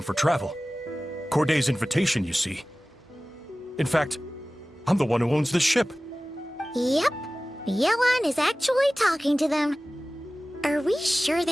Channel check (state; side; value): normal; both; correlation 0.97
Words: for travel. Corday's invitation, you see. In fact, I'm the one who owns the ship. Yep. Yelan is actually talking to them. Are we sure